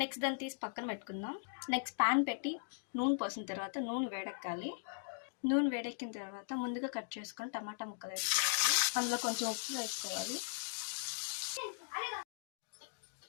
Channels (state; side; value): silent; right; digital silence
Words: దాన్ని తీసి పక్కన పెట్టుకుందాం. నెక్స్ట్ పాన్ పెట్టి నూనె పోసిన తర్వాత నూనె వేడెక్కాలి. నూనె వేడెక్కిన తర్వాత ముందుగా కట్ చేసుకొని టమాటా ముక్కలు వేసుకోవాలి. అందులో కొంచెం ఉప్పు వేసుకోవాలి.